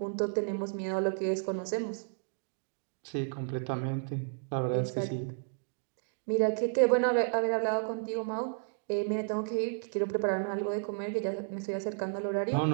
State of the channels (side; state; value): left; silent; digital silence